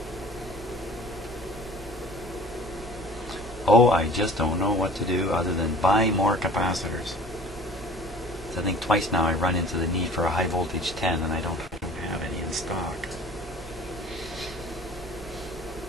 Oh, I just don't know what to do other than buy more capacitors. So I think twice now I run into the need for a high voltage 10 and I don't have any in stock.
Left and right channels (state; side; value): normal; both; correlation 0.46